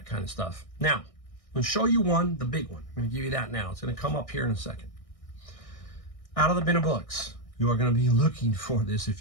kind of stuff. Now, I'm going to show you one, the big one. I'm going to give you that now. It's going to come up here in a second. Out of the bin of books, you are going to be looking for this. If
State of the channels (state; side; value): late; right; 1.6 ms